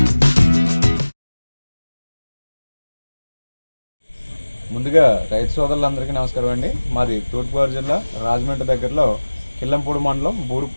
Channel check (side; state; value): both; inverted; correlation -1.00